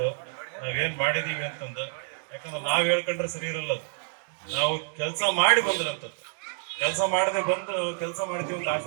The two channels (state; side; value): silent; left; digital silence